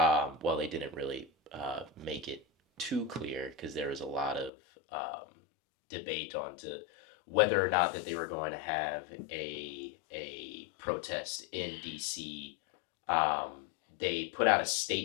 they didn't really make it too clear because there was a lot of debate on to whether or not that they were going to have a protest in DC. They put out a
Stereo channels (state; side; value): drops out; right; at 4.5 s